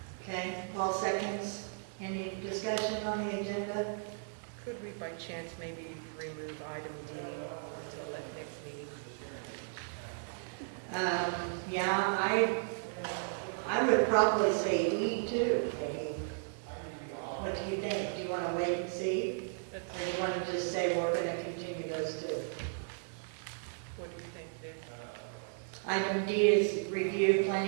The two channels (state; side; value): silent; left; digital silence